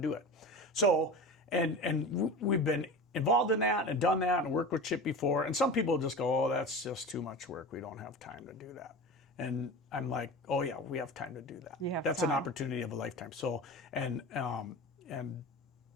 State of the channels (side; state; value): both; normal; correlation 0.31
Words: it. So, and we've been involved in that and done that and worked with Chip before. And some people just go, oh, that's just too much work. We don't have time to do that. And I'm like, oh yeah, we have time to do that. That's an opportunity of a lifetime. So, and